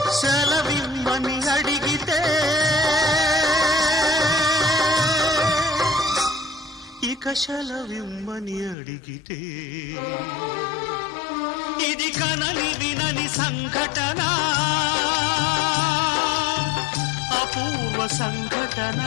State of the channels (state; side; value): drops out; right; at 8.8 s